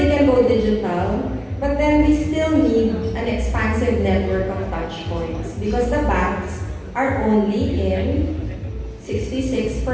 can go digital, but then we still need an expansive network of touch points because the banks are only in 66%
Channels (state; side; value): identical; both; correlation 1.00